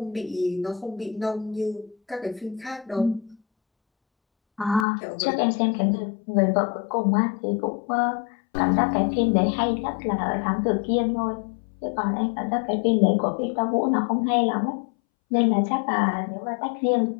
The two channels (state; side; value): drops out; right; at 4.9 s